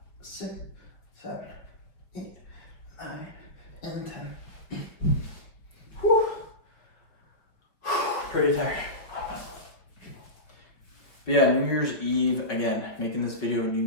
6, 7, 8, 9, and 10. Whew. Pretty tired. But yeah, New Year's Eve, again, making this video New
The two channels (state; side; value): late; right; 5.2 ms